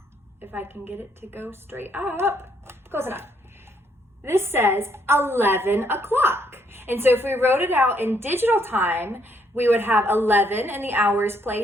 If I can get it to go straight up. Close enough. This says 11 o'clock. And so if we wrote it out in digital time, we would have 11 in the hours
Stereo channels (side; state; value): both; normal; correlation 0.71